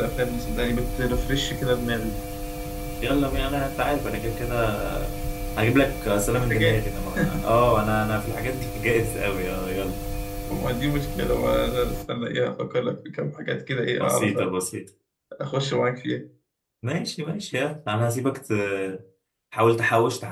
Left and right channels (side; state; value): both; identical; correlation 1.00